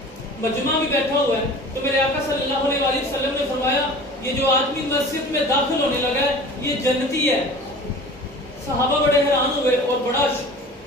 مجمع بھی بیٹھا ہوا ہے. تو میرے آقا صلی اللہ علیہ وآلہ وسلم نے فرمایا یہ جو آدمی مسجد میں داخل ہونے لگا ہے یہ جنتی ہے. صحابہ بڑے حیران ہوئے اور بڑا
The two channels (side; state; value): both; normal; correlation 0.41